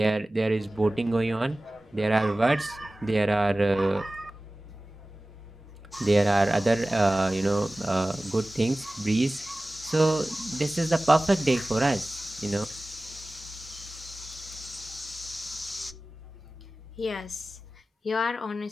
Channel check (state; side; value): normal; both; correlation 0.97